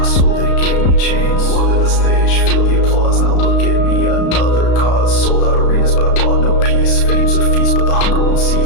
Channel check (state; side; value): late; right; 34 ms